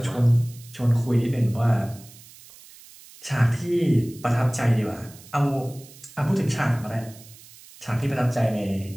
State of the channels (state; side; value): noise; right; hiss, 21 dB below the sound